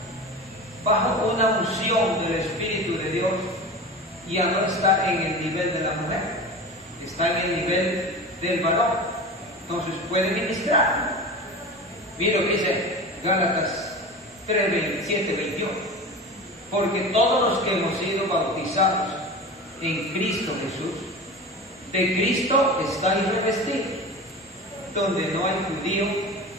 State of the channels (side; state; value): both; normal; correlation 0.31